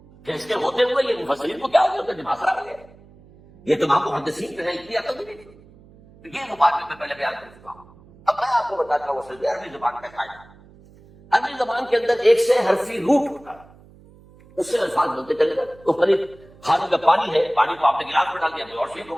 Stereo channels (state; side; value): noise; right; hum, 25 dB below the sound